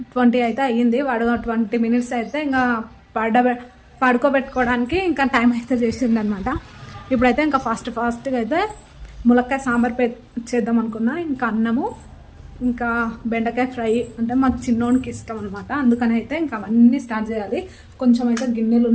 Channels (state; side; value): identical; both; correlation 1.00